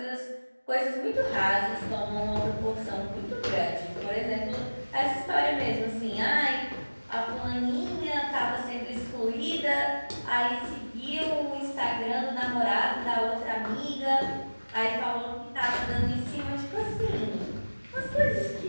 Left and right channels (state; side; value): inverted; both; correlation -1.00